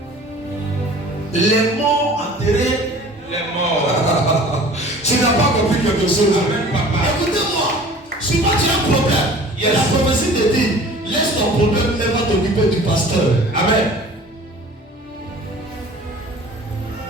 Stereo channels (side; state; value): both; normal; correlation 0.45